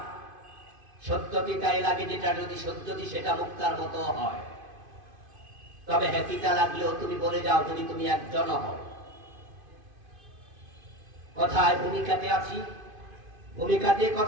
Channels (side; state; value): left; late; 2.5 ms